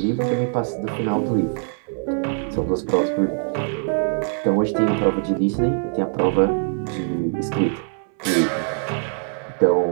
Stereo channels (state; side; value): silent; left; digital silence